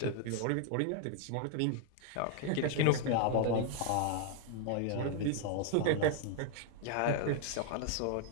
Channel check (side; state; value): both; different; correlation 0.00